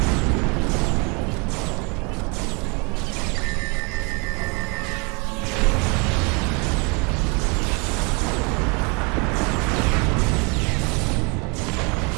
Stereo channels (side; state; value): left; quieter; 31.1 dB